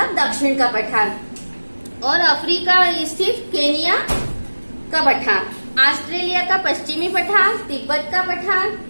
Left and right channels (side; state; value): both; inverted; correlation -1.00